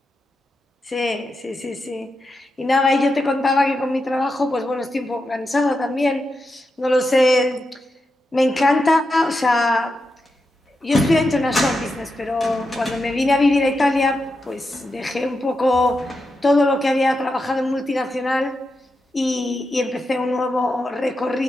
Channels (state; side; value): normal; both; correlation 0.87